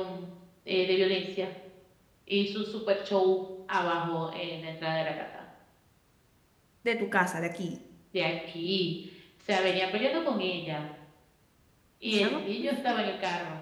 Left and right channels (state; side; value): identical; both; correlation 1.00